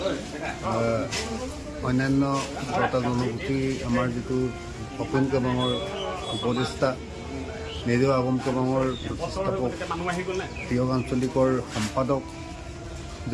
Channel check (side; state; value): both; identical; correlation 1.00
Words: অন্যান্য বটা জনগোষ্ঠী আমাৰ যিটো অপন কবাঙৰ উপদেষ্টা নেজেও আগম কবাঙৰ প্ৰতিষ্ঠাপক তিয়ক আঞ্চলিকৰ সম্পাদক